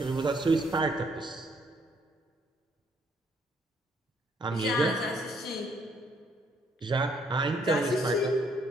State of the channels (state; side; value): normal; both; correlation 0.68